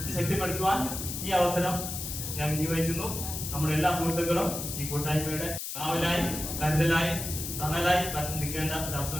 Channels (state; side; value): noise; left; hiss, 6 dB below the sound